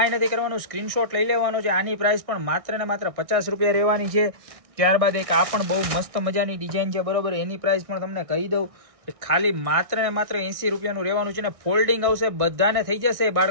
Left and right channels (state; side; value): late; left; 1.6 ms